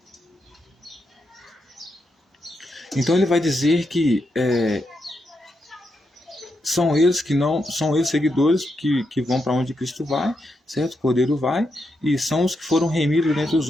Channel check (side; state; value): both; normal; correlation 0.83